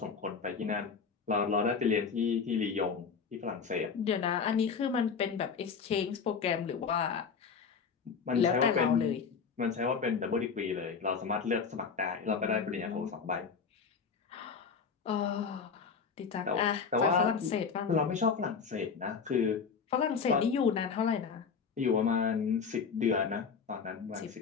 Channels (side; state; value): right; quieter; 5.8 dB